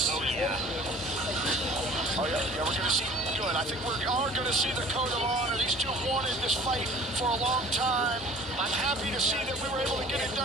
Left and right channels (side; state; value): both; normal; correlation 0.48